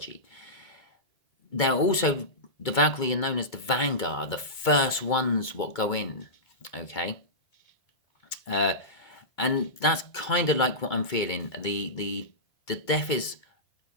They're also, the Valkyrie are known as the Vanguard, the first ones what go in. Okay, and that's kind of like what I'm feeling. The death is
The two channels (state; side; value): late; right; 2.3 ms